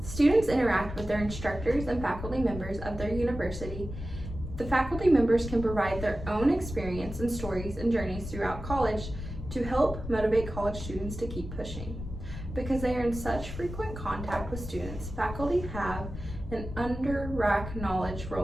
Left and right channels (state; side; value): noise; left; rumble, 9 dB below the sound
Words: Students interact with their instructors and faculty members of their university. The faculty members can provide their own experience and stories and journeys throughout college to help motivate college students to keep pushing. Because they are in such frequent contact with students, faculty have an under-rack knowledge